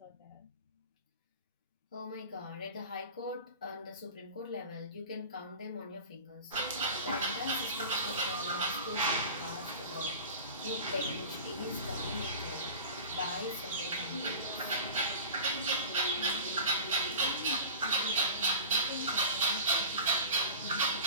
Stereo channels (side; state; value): both; inverted; correlation -0.37